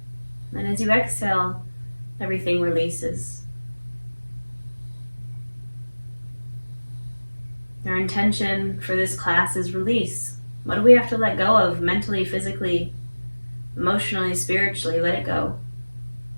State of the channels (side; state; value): both; inverted; correlation -1.00